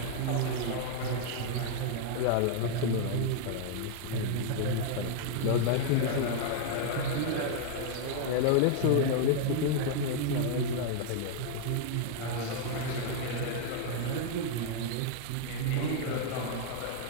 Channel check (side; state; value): both; different; correlation -0.01